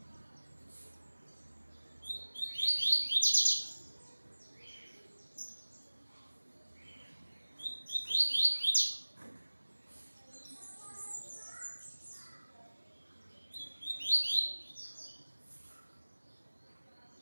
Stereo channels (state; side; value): inverted; both; correlation -1.00